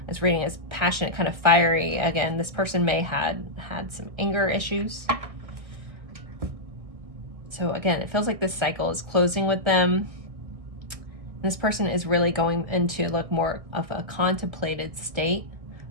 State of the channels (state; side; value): late; left; 1.6 ms